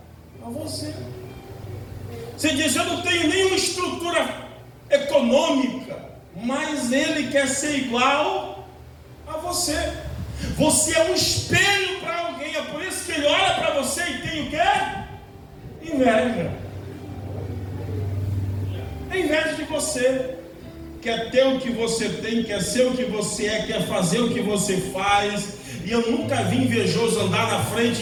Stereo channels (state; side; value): identical; both; correlation 1.00